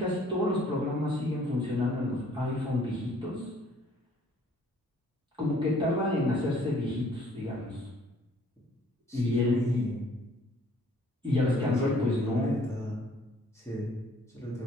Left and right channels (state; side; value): normal; both; correlation 0.59